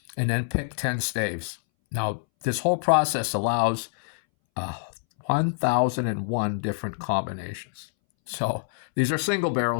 and then pick 10 staves. Now, this whole process allows 1,001 different combinations. So these are single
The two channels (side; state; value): right; silent; 61 dB below the other